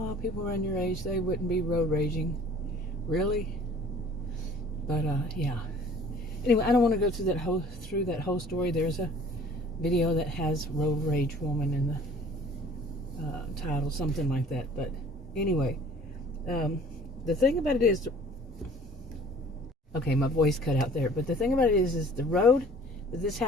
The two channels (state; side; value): normal; both; correlation 0.51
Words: people around your age, they wouldn't be road raging. Really? But, yeah. Anyway, I don't want to go through that whole story. There's a video that has road rage woman in the title, something like that. But anyway, the thing about it is, okay, my voice cut out there. But the thing about it is the road that this